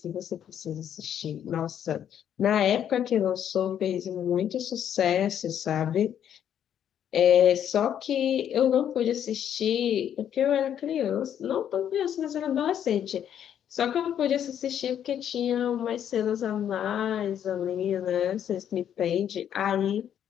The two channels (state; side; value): quieter; right; 9.6 dB